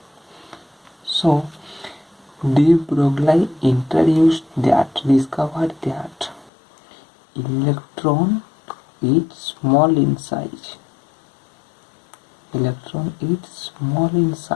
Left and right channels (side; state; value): right; drops out; at 6.5 s